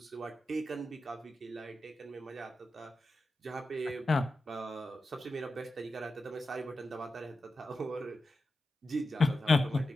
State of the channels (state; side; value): normal; both; correlation 0.90